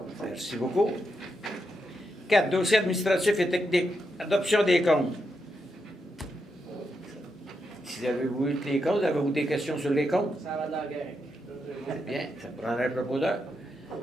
Merci beaucoup. 4. Dossiers administratifs et techniques. Adoption des comptes. Si avez-vous eu les comptes, avez-vous des questions sur les comptes? Ça va de la guerre. Bien, ça prendra un proposeur.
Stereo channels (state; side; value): normal; both; correlation 0.84